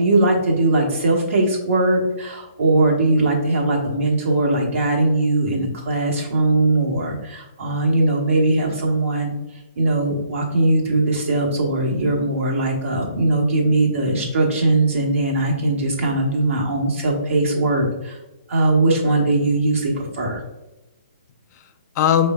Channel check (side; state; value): both; inverted; correlation -0.66